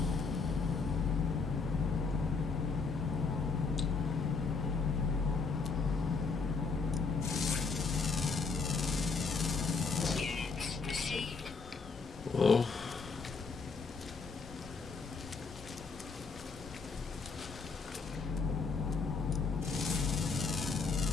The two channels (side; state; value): right; quieter; 4.7 dB